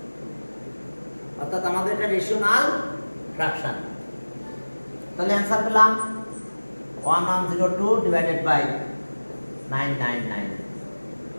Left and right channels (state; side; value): inverted; both; correlation -1.00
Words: অর্থাৎ আমাদের এটা রেশনাল ফ্র্যাকশন তাহলে অ্যানসার পেলাম 1102 divided by